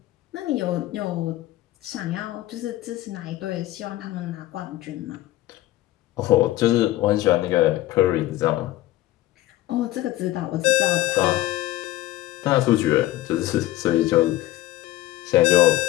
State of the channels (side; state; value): right; quieter; 15.9 dB